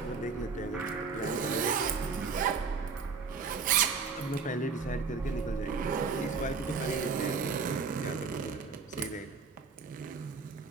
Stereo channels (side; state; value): left; quieter; 5.0 dB